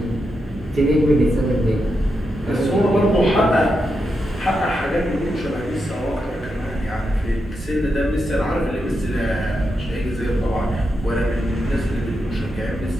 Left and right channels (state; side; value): normal; both; correlation 0.86